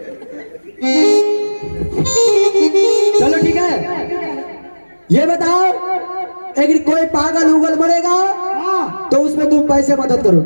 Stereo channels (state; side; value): inverted; both; correlation -1.00